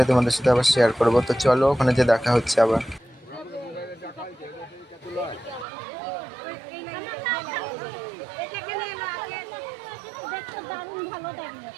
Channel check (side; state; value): left; drops out; at 5.7 s